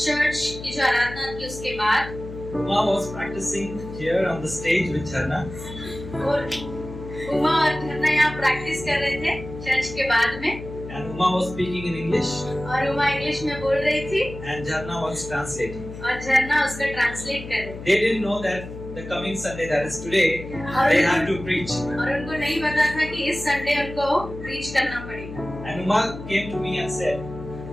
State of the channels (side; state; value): left; noise; hum, 12 dB below the sound